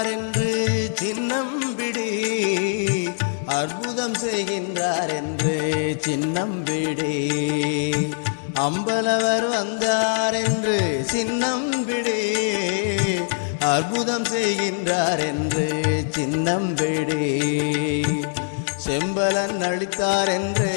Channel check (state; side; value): silent; right; digital silence